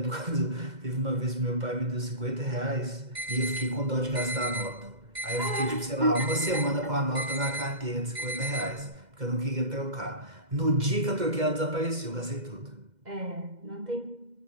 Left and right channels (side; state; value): left; late; 2.1 ms